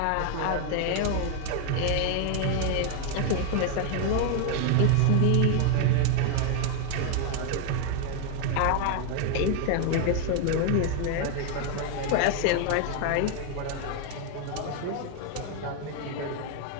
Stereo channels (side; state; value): both; different; correlation 0.01